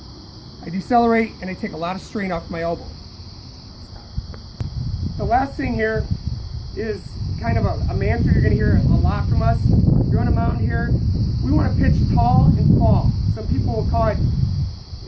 I decelerate and I take a lot of strain off my elbow. The last thing here is kind of a mantra you're going to hear a lot from us. You're on a mountain here. We want to pitch tall and fall. Some people will call it,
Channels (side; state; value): both; identical; correlation 1.00